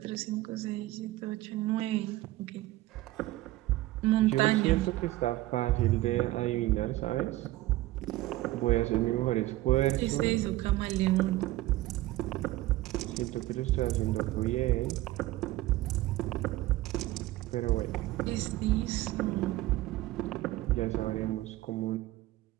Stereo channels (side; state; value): left; quieter; 17.0 dB